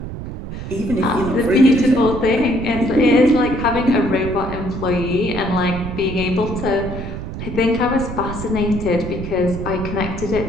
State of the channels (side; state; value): right; noise; rumble, 8 dB below the sound